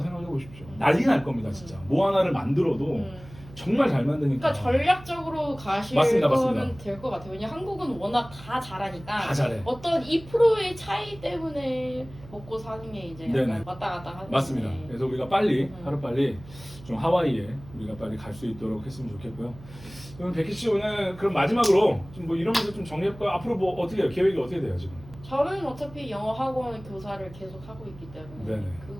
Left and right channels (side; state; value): right; noise; hum, 18 dB below the sound